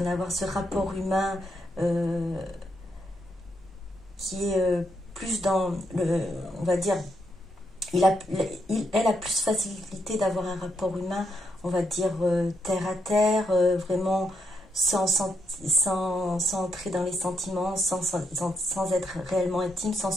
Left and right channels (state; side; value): normal; both; correlation 0.79